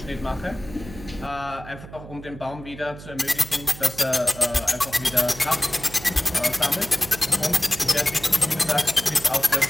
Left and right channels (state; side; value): noise; right; hum, 15 dB below the sound